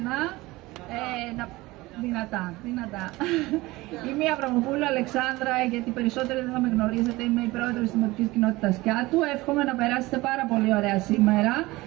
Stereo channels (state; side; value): quieter; left; 20.3 dB